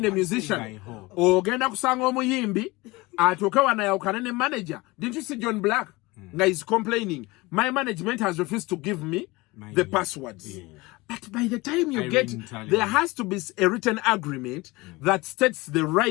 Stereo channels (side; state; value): right; quieter; 22.4 dB